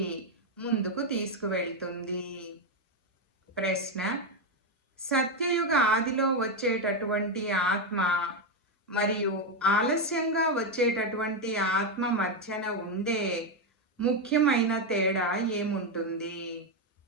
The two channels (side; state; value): both; normal; correlation 0.06